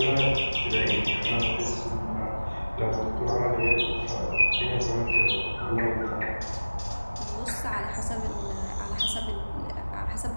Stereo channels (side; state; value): both; inverted; correlation -1.00